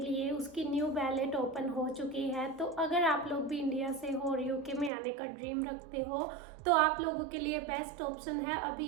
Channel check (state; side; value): drops out; left; at 4.9 s